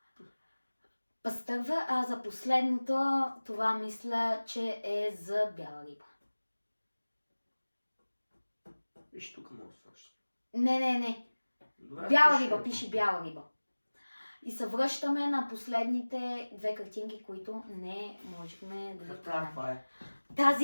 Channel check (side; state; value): both; inverted; correlation -1.00